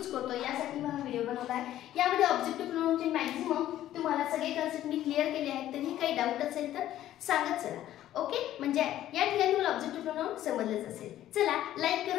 करतो यासाठी हा व्हिडिओ बनवला आहे. यामध्ये ऑब्जेक्टिव्ह प्रोनाउनचे मॅक्झिमम तुम्हाला सगळे कन्सेप्ट मी क्लिअर केले आहेत. तरी काही डाऊट असेल तर सांगत चला. ओके, म्हणजे या ठिकाणी तुम्हाला ऑब्जेक्टिव्ह प्रोनाउन समजलंच असेल. चला लाईक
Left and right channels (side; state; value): right; quieter; 12.9 dB